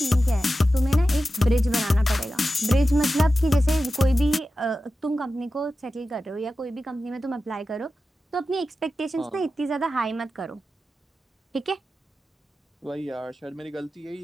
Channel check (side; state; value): both; normal; correlation 0.93